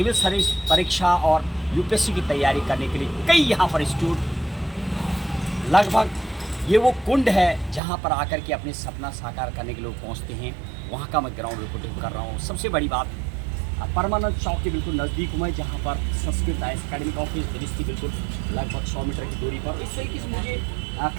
सर्विस परीक्षा और यूपीएससी की तैयारी करने के लिए कई यहाँ पर इंस्टीट्यूट, लगभग ये वो कुंड है जहाँ पर आकर के अपने सपना साकार करने के लोग पहुँचते हैं। वहाँ का मैं ग्राउंड रिपोर्टिंग कर रहा हूँ। सबसे बड़ी बात, परमानंद चौक के बिल्कुल नज़दीक हूँ मैं, जहाँ पर संस्कृत एकेडमिक ऑफिस दृष्टि बिल्कुल लगभग 100 मीटर की दूरी पर। इस तरीके से मुझे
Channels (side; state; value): left; drops out; at 7.8 s